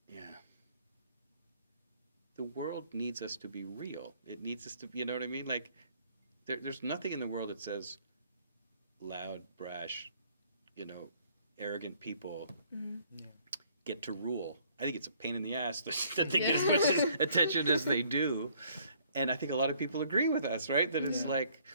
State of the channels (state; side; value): inverted; both; correlation -0.62